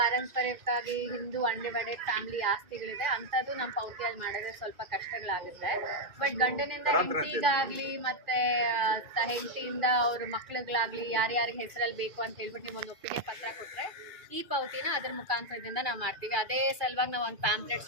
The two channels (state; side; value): late; left; 2.3 ms